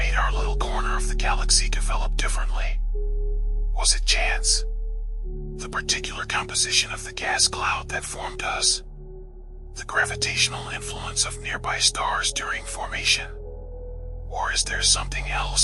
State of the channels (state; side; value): identical; both; correlation 1.00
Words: our little corner of the galaxy develop differently? Was it chance? The particular composition of the gas cloud that formed us? The gravitational influence of nearby stars during formation? Or is there something